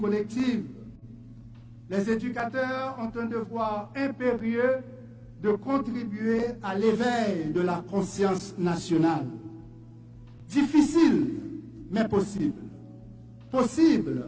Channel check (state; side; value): identical; both; correlation 1.00